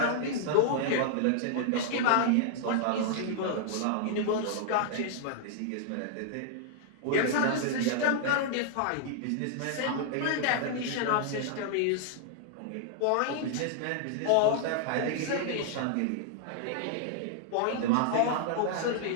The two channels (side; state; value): both; different; correlation -0.01